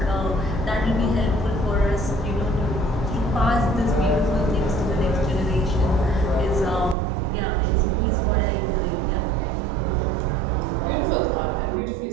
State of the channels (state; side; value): drops out; left; at 7.0 s